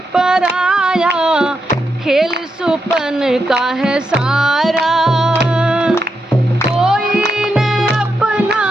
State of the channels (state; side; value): normal; both; correlation 0.84